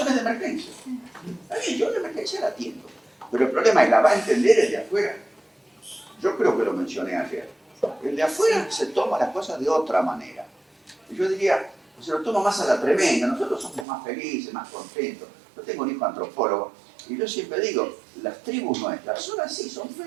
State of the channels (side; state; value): left; drops out; at 13.9 s